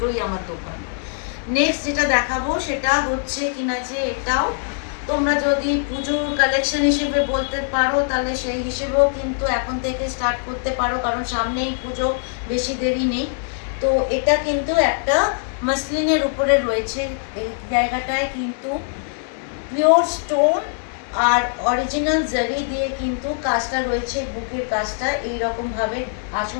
আমার দোকান। নেক্সট যেটা দেখাবো সেটা হচ্ছে কিনা যে এটাও তোমরা যদি পুজোর কালেকশন হিসেবে বলতে পারো, তাহলে সেই হিসেবেও কিন্তু এখন থেকে স্টার্ট করতে পারো, কারণ সামনেই পুজো, বেশি দেরি নেই। তো এটা কিন্তু একটা মাসলিনের উপরে রয়েছে। এই জায়গাটায় কিন্তু পিওর স্টোন আর অরিজিনাল জারি দিয়ে কিন্তু কাজটা রয়েছে। বুকের কাজটা এইরকম ভাবে,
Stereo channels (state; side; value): silent; right; 64 dB below the other